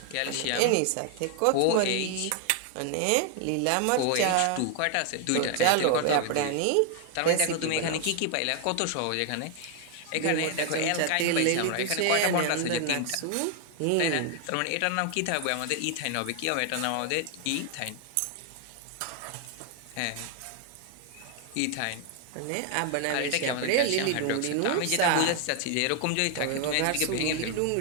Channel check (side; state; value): both; different; correlation 0.00